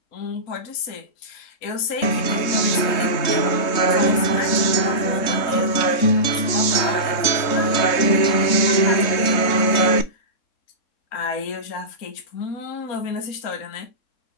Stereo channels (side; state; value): right; late; 3.2 ms